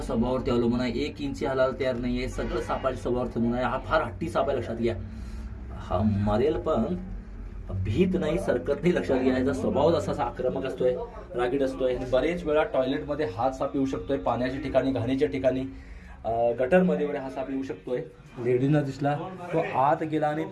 स्वभावावरती अवलंबून आहे. 1 इंच हालायला तयार नाही आहे. सगळं सापाच्या स्वभावावरती अवलंबून आहे. हा फार हट्टी साप आहे. लक्षात घ्या हा मरेल पण भीत नाही, सरकत नाही. लक्षात घ्या याचा स्वभाव असा आक्रमक असतोय, रागीट असतोय. आणि बरेच वेळा टॉयलेटमध्ये हा साप येऊ शकतोय. पाण्याच्या ठिकाणी, घाणीच्या ठिकाणी, गटरमध्ये वगैरे हा साप येऊ शकतोय. लेडीजना दिसला तो आत गेला आणि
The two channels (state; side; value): identical; both; correlation 1.00